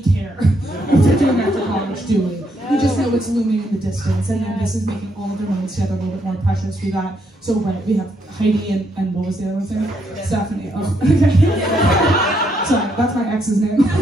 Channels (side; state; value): both; normal; correlation 0.75